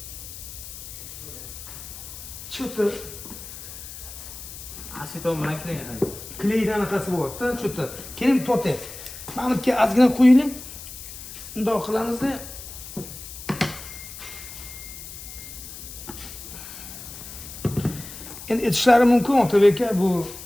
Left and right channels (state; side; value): noise; left; hiss, 12 dB below the sound